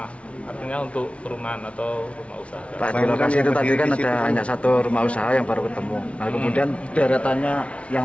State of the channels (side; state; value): right; late; 0.062 ms